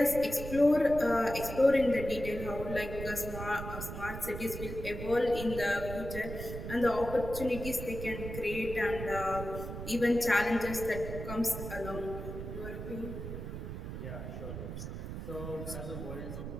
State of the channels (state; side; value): noise; right; rumble, 7 dB below the sound